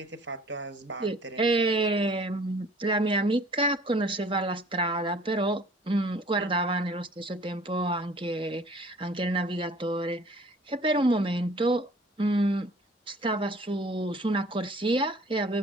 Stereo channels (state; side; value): normal; both; correlation 0.51